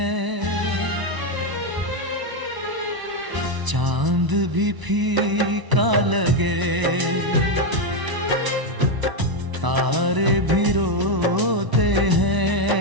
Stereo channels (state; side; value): late; left; 1.0 ms